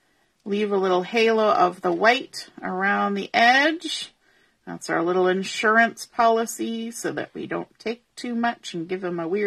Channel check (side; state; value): both; identical; correlation 1.00